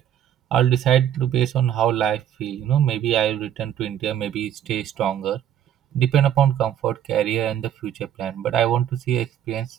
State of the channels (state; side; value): quieter; left; 10.2 dB